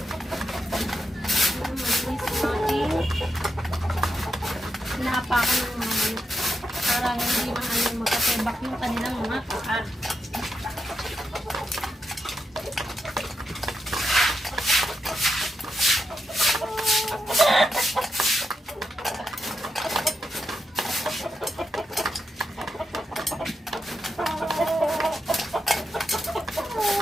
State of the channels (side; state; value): both; normal; correlation 0.85